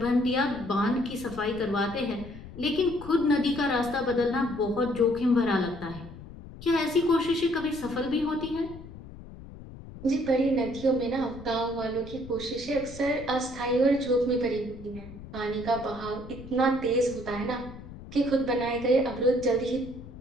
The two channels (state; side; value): noise; left; rumble, 15 dB below the sound